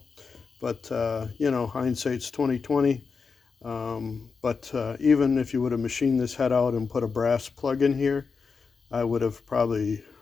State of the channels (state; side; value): quieter; right; 5.1 dB